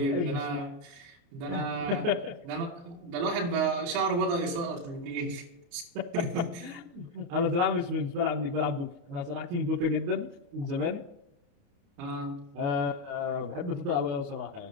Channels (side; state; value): left; late; 29 ms